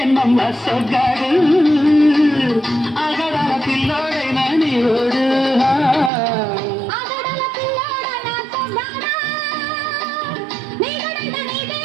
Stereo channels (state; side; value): drops out; left; at 6.1 s